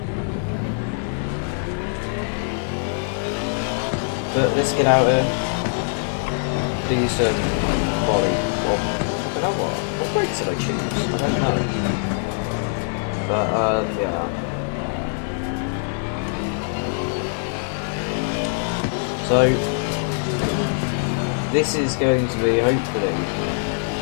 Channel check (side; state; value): right; silent; 63 dB below the other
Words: But let's get out here. do some quality. Well, I don't know what brakes did I choose? I don't know. But yeah. So this is going to be hopefully